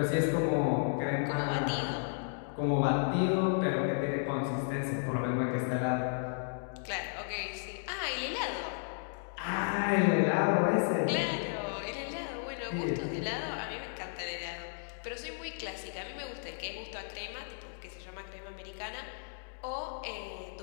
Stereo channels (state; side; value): silent; right; digital silence